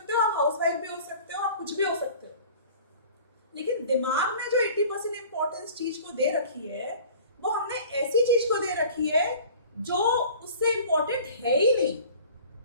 हो, आप हाउसवाइफ भी हो सकते हो, आप कुछ भी हो सकते हो, लेकिन दिमाग में जो 80% इंपॉर्टेंस चीज को दे रखी है, वो हमने ऐसी चीज को दे रखी है जो उससे इंपॉर्टेंट है ही नहीं।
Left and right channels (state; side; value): inverted; both; correlation -0.45